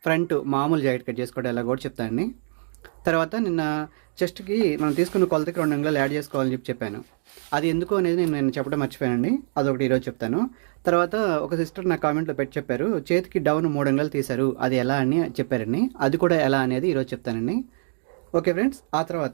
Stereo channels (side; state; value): left; silent; digital silence